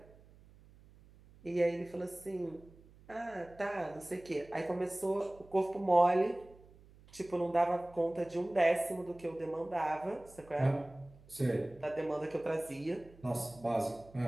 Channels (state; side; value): noise; right; hum, 24 dB below the sound